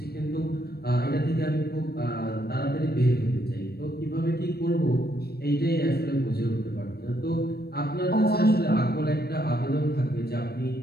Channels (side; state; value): right; late; 0.46 ms